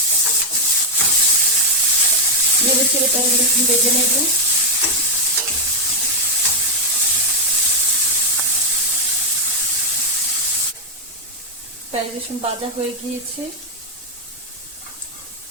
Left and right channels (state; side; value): normal; both; correlation 0.02